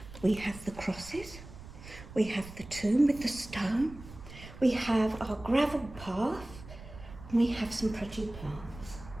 We have the crosses, we have the tomb with the stone, we have our gravel path, and we have some pretty plants.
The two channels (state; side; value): noise; right; rumble, 15 dB below the sound